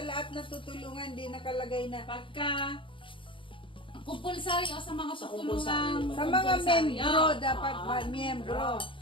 lahat na tutulungan di nakalagay na Pagka kumpulsary o sa mga tutulungan sa mga membro dapat miyembro.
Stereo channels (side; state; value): right; late; 0.25 ms